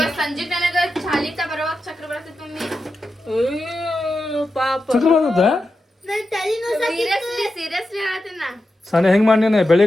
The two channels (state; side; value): normal; both; correlation 0.90